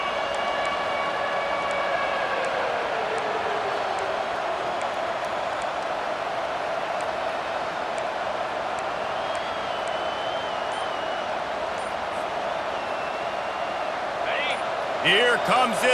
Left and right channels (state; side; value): identical; both; correlation 1.00